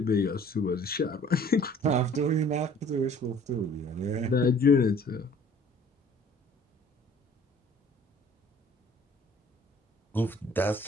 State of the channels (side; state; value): both; normal; correlation 0.53